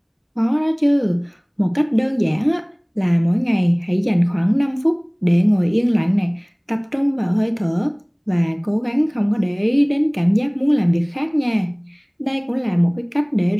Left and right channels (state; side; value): identical; both; correlation 1.00